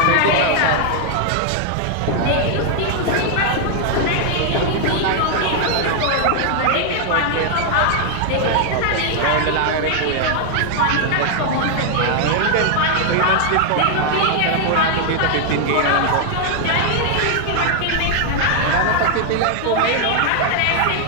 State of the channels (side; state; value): both; different; correlation 0.00